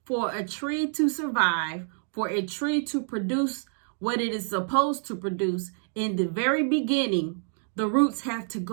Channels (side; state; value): left; silent; 60 dB below the other